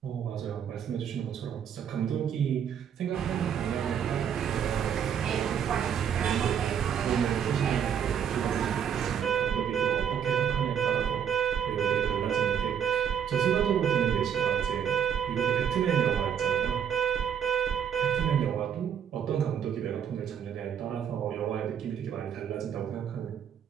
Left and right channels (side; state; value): left; quieter; 8.4 dB